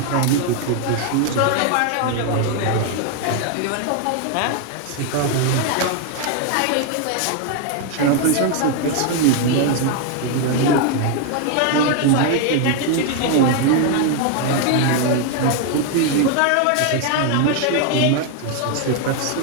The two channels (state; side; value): different; both; correlation 0.01